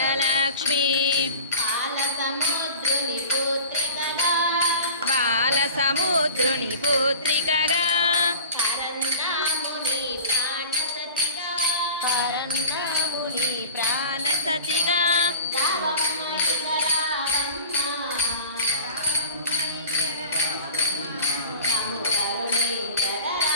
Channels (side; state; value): both; inverted; correlation -0.38